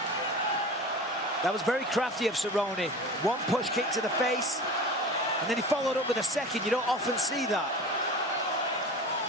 That was very crafty of Cerrone. One push kick to the face, and then he followed up with a second. You don't often see that.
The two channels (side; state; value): both; normal; correlation 0.36